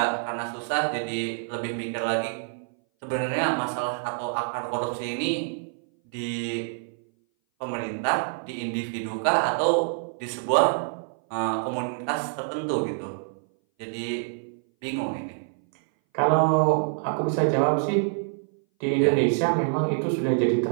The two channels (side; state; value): left; silent; 58 dB below the other